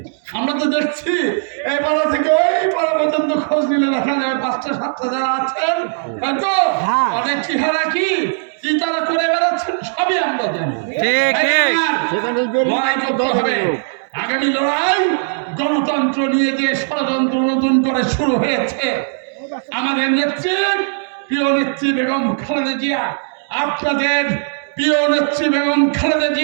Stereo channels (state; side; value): silent; left; digital silence